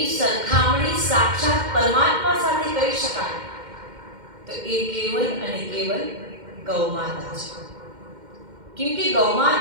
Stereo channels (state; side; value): late; left; 2.1 ms